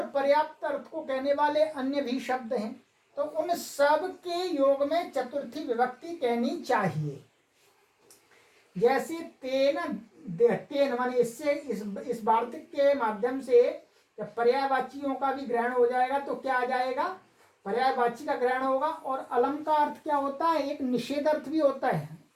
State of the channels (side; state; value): both; identical; correlation 1.00